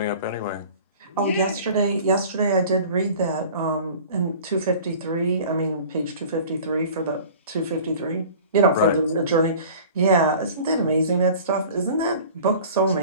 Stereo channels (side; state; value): both; inverted; correlation -0.43